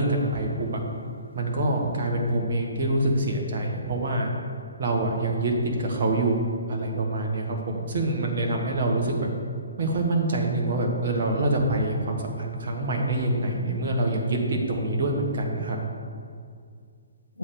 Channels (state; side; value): inverted; both; correlation -0.49